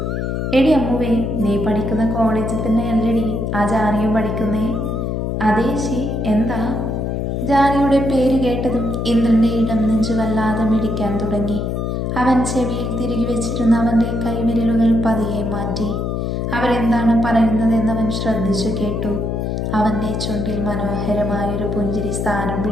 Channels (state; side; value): noise; left; hum, 1 dB below the sound